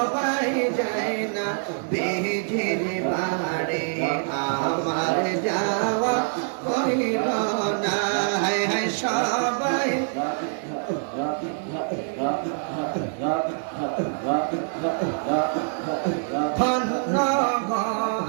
যায় না বিজির বাড়ি আমার যাওয়া হইল না। হায় হায় সবাই ধন্য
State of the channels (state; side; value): silent; left; digital silence